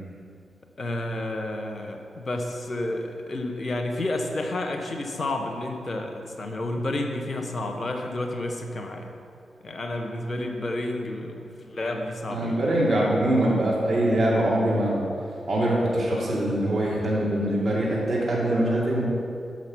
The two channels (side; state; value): both; normal; correlation 0.84